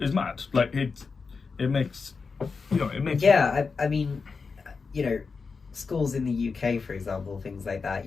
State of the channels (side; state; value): right; quieter; 4.8 dB